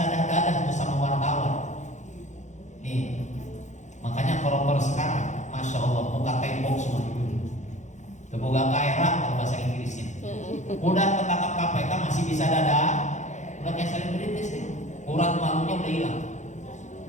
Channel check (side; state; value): right; late; 0.35 ms